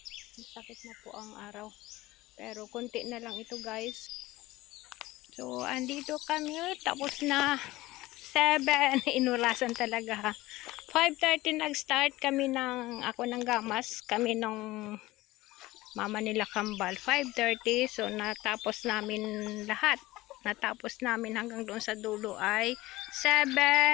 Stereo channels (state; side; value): quieter; right; 18.5 dB